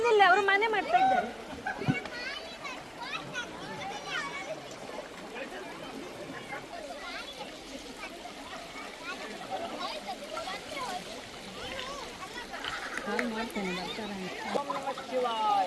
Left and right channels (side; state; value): both; identical; correlation 1.00